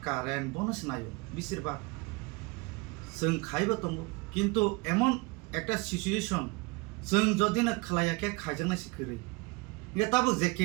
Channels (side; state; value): left; quieter; 26.4 dB